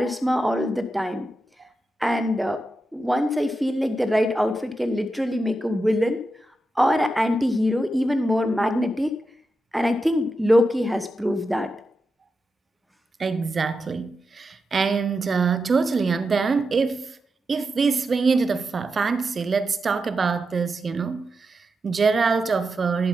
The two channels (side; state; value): both; normal; correlation 0.88